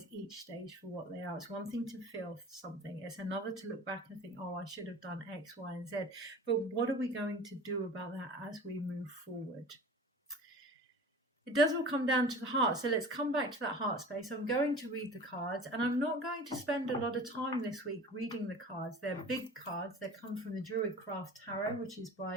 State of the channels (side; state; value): both; normal; correlation 0.39